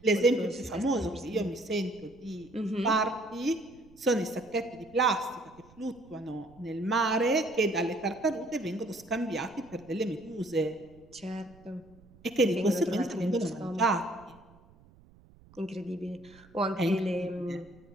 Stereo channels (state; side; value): noise; right; rumble, 26 dB below the sound